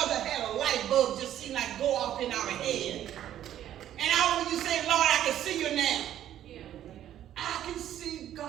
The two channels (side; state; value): left; quieter; 11.5 dB